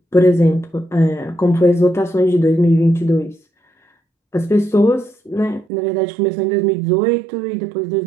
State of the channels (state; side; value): drops out; left; at 5.7 s